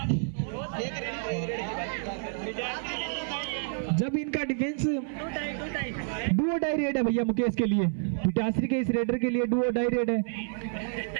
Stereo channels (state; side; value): silent; left; 57 dB below the other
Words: जब इनका डिफेंस डुओ डाई रेड है भैया मुकेश के लिए, पिटासरी के इस रेडर के लिए डुओ डाई रेड है।